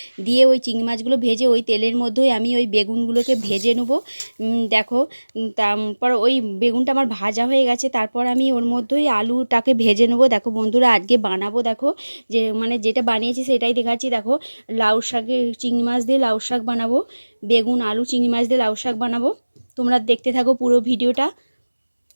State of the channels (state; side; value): inverted; both; correlation -1.00